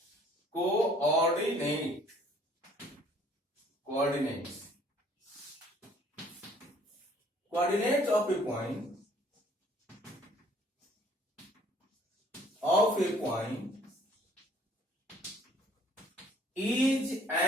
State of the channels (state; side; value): normal; both; correlation 0.58